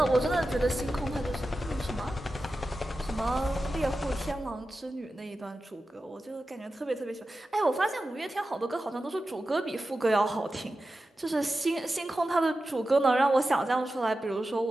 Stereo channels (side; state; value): both; normal; correlation 0.93